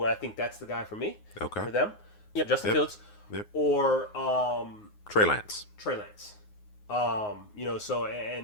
I think that's the guy for me. Okay. For them, Justin Fields, or Trey Lance. So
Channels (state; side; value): late; right; 9.6 ms